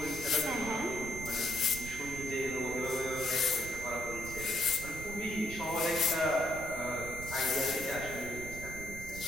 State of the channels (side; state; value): right; noise; rumble, 11 dB below the sound